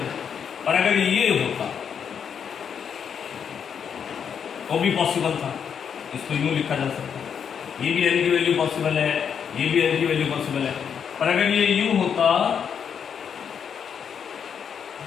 पर अगर ये होता वो भी पॉसिबल था, इसको यूं लिखा जा सकता है। ये भी N की वैल्यू पॉसिबल है, ये भी N की वैल्यू पॉसिबल है। पर अगर ये यूं होता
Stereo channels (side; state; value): right; quieter; 7.5 dB